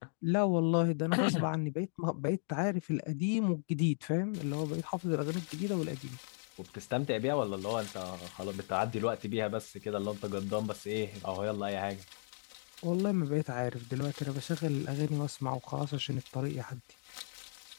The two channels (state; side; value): silent; right; digital silence